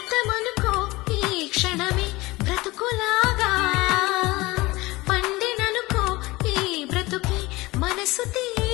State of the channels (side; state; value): right; quieter; 21.1 dB